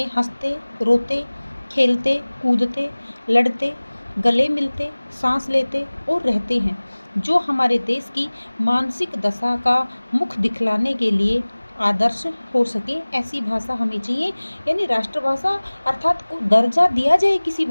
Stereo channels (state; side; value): inverted; both; correlation -1.00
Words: हंसते, रोते, खेलते, कूदते, लड़ते, गले मिलते, सांस लेते और रहते हैं, जो हमारे देश की मानसिक दशा का मुख दिखलाने के लिए आदर्श हो सके, ऐसी भाषा हमें चाहिए। यानी राष्ट्रभाषा अर्थात को दर्जा दिया जाए किसी